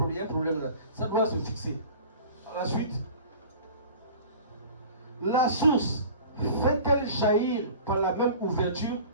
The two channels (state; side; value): inverted; both; correlation -0.42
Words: un problème là. Ça doit se fixer. À la suite, la source fait-elle jaillir par la même ouverture